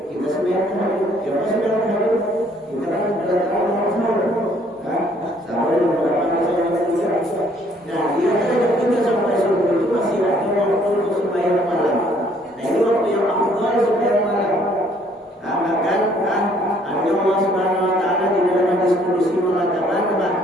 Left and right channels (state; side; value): normal; both; correlation 0.63